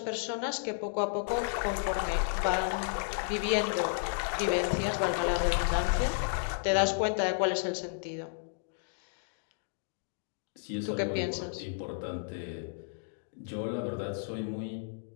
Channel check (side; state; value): right; silent; digital silence